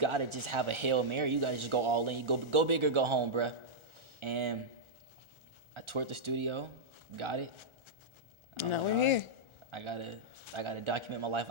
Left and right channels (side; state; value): left; late; 1.4 ms